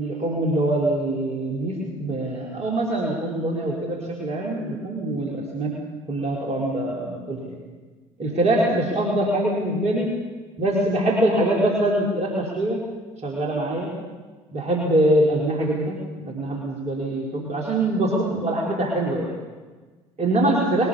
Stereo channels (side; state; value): both; normal; correlation 0.53